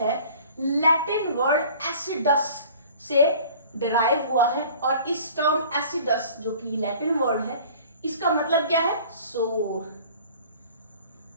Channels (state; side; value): inverted; both; correlation -0.47